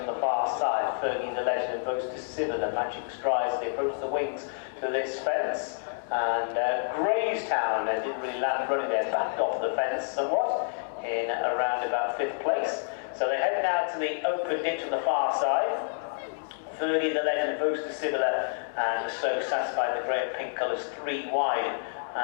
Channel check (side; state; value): right; silent; digital silence